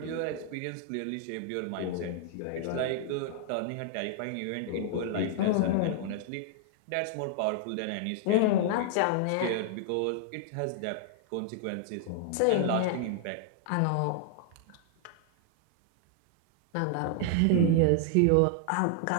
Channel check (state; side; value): different; both; correlation -0.01